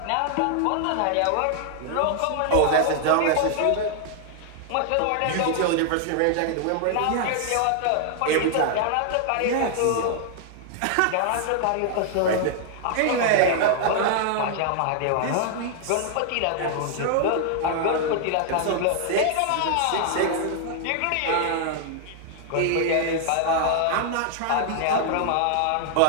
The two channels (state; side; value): different; both; correlation 0.00